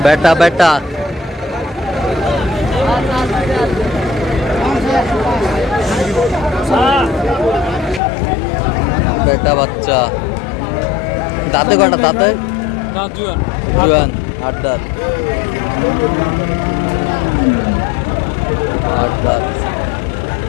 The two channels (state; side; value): drops out; right; at 8.0 s